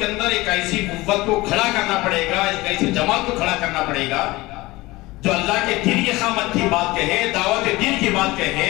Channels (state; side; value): quieter; right; 20.5 dB